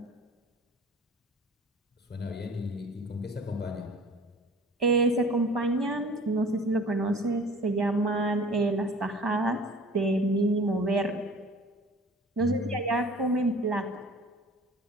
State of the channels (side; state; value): both; normal; correlation 0.46